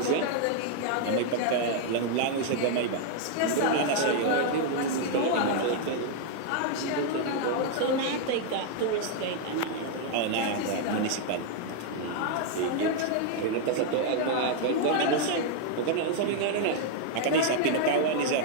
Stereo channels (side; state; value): both; different; correlation 0.00